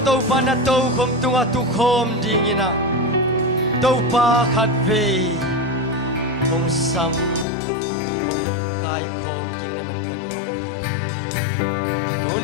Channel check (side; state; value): right; drops out; at 7.5 s